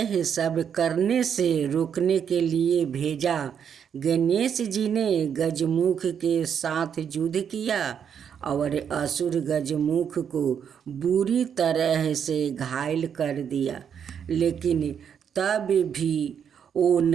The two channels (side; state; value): left; quieter; 7.9 dB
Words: सब करने से रोकने के लिए भेजा। गणेश जी ने गजमुख के साथ युद्ध किया और असुर गजमुख को बुरी तरह से घायल कर दिया, लेकिन तब भी वो